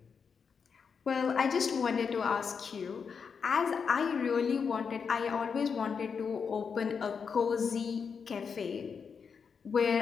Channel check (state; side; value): quieter; right; 6.1 dB